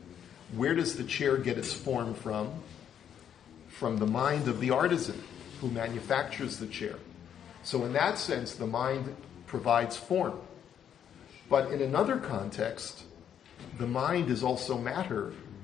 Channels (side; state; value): right; quieter; 9.1 dB